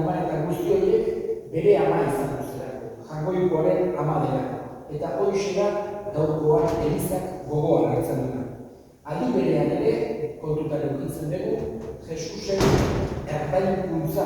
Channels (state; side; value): identical; both; correlation 1.00